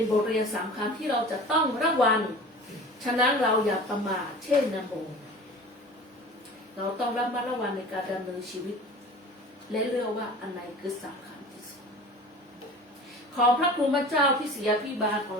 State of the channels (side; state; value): both; normal; correlation 0.40